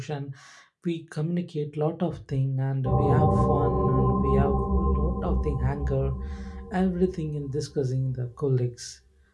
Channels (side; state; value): both; identical; correlation 1.00